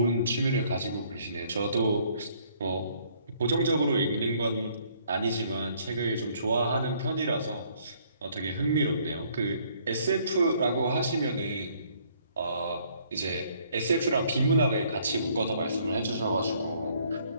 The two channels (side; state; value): both; inverted; correlation -0.63